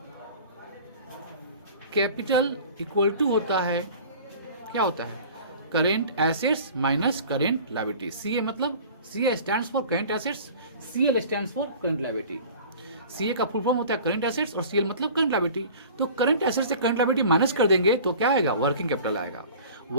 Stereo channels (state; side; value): inverted; both; correlation -0.43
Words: कैपिटल इक्वल टू होता है, क्या होता है? Current assets minus current liability. CA मतलब CA stands for current assets, CL stands for current liability. CA का फुल फॉर्म होता है करेंट एसेट्स और सीएल मतलब करेंट लायबिलिटी. तो करेंट एसेट्स से करेंट लायबिलिटी माइनस कर देंगे तो क्या आएगा? वर्किंग कैपिटल आएगा.